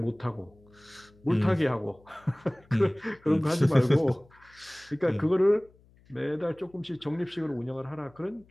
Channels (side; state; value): left; noise; hum, 29 dB below the sound